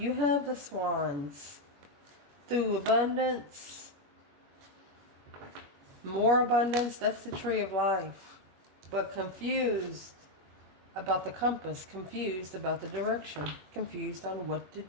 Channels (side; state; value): left; late; 21 ms